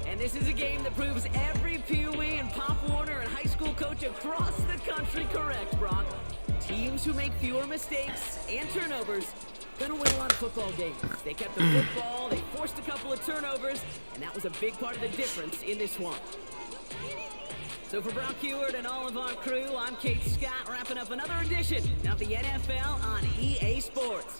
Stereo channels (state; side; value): inverted; both; correlation -1.00